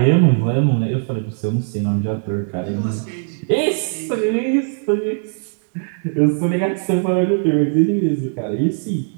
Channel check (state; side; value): silent; left; 66 dB below the other